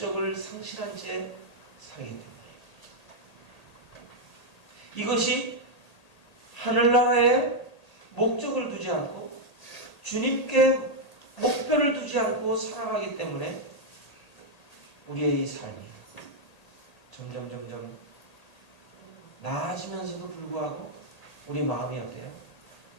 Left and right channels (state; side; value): late; right; 1.8 ms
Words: 상실한 채 살기 때문에 이것이 하늘나라에 목적을 두지 않고 주님께 목표를 두지 않고 살아가기 때문에 우리의 이 삶이 점점 나아지면서도 불구하고 우리 마음이 어때요?